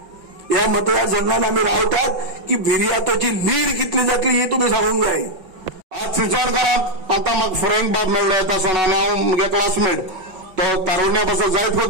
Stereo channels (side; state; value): left; late; 5.8 ms